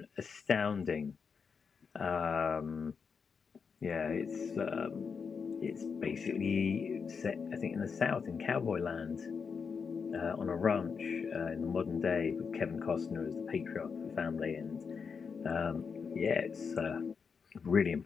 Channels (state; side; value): quieter; right; 5.8 dB